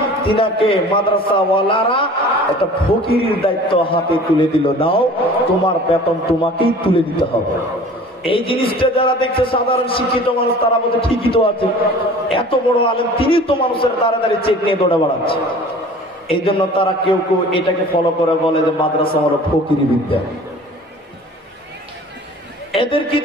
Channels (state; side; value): normal; both; correlation 0.45